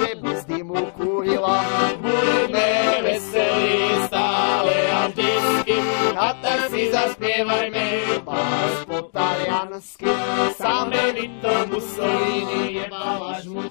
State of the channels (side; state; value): right; silent; digital silence